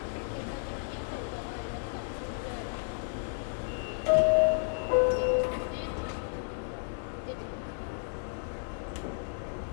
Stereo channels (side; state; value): right; silent; digital silence